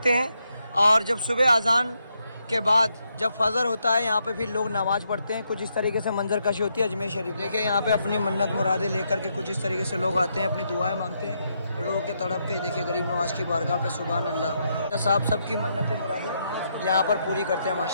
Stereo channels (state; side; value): inverted; both; correlation -0.79